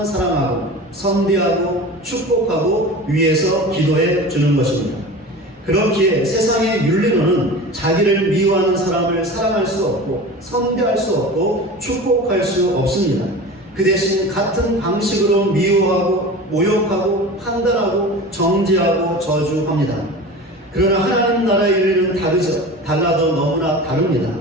사랑하고 선대하고 축복하고 위해서 기도해 주는 것입니다. 그렇기에 세상의 윤리로는 자기를 미워하는 사람을 사랑할 수 없고 선대할 수 없고 축복할 수 없습니다. 그 대신 같은 방식으로 미워하고 모욕하고 판단하고 정죄하고 저주합니다. 그러나 하나님 나라의 윤리는 다르죠. 달라도 너무나 다릅니다.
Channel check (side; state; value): both; normal; correlation 0.34